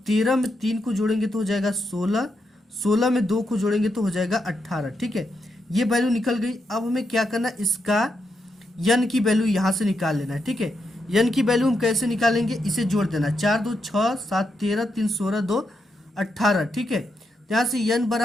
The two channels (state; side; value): normal; both; correlation 0.83